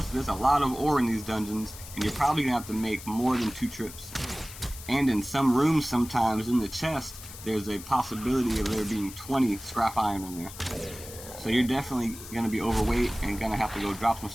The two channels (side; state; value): left; noise; hiss, 14 dB below the sound